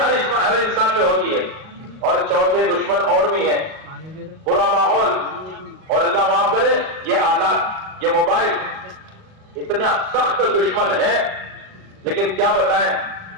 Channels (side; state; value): left; late; 38 ms